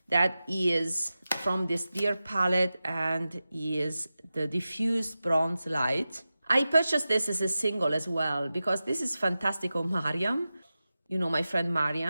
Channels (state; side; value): inverted; both; correlation -0.94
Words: that is from this Deer palette and is the diffused bronze light. I purchased this as a single as well because this is fantastic on Mariam. You know, my friend